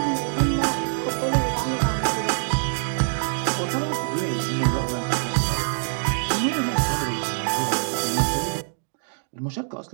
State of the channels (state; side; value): silent; left; digital silence